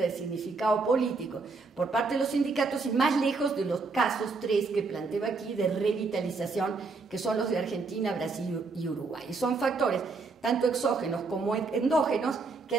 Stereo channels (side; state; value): left; quieter; 4.1 dB